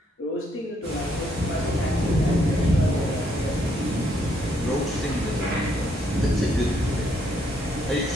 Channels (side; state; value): both; normal; correlation 0.72